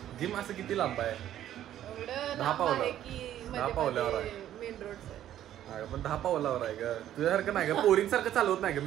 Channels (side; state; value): left; quieter; 11.8 dB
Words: जिम असं किती लांब आहे. 10 पावलावर आहे. पण 10 पावलावर आहे का. तुझ्यासारखं नाही का. पोरींसारखं चालवत नाही का